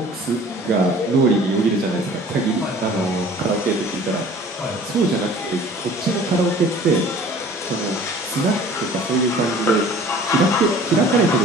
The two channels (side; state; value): both; normal; correlation 0.48